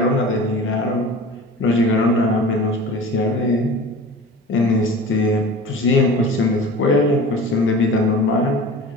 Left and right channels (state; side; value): normal; both; correlation 0.38